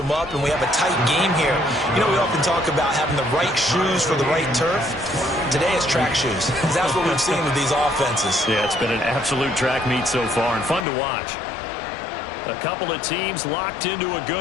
up, and we have a tight game here. You know, we often talk about having the right shoes for the right turf. Today it's track shoes. That's what we've seen with these offenses. Yeah, it's been an absolute track meet so far and fun to watch. A couple of teams locked into a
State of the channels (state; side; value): drops out; right; at 10.9 s